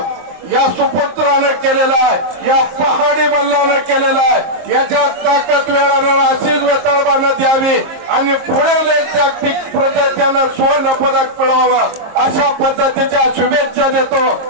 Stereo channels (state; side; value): late; left; 23 ms